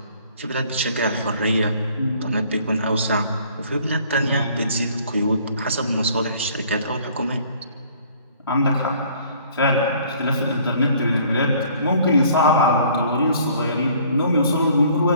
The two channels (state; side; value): inverted; both; correlation -0.57